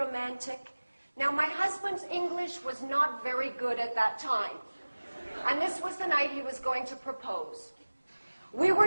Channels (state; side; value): inverted; both; correlation -1.00